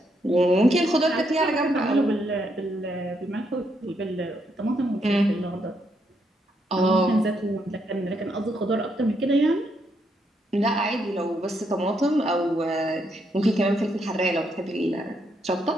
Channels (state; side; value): normal; both; correlation 0.76